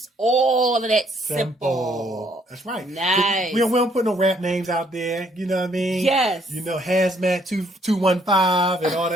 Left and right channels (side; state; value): both; normal; correlation 0.66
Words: all of that simple. That's right. Nice. We don't put no rap names out there. You know what I mean? Yes. You know, Hazmat 215 and all